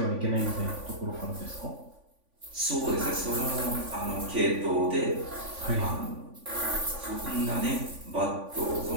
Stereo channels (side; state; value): left; late; 3.5 ms